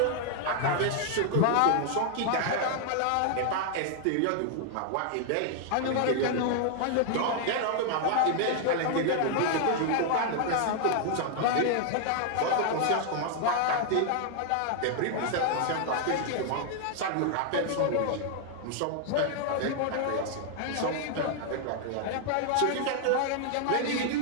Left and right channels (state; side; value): different; both; correlation 0.00